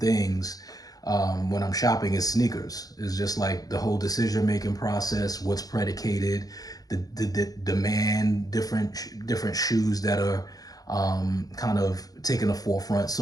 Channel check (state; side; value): late; right; 0.18 ms